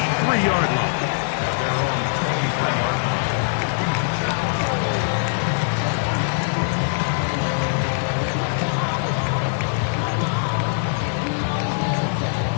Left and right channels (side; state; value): right; silent; digital silence